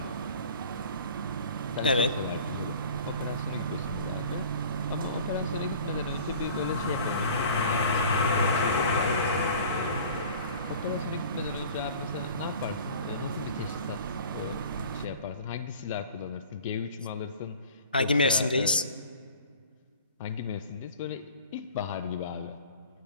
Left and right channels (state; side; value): inverted; both; correlation -0.44